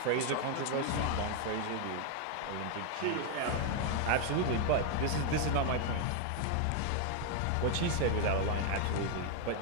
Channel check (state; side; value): different; both; correlation 0.00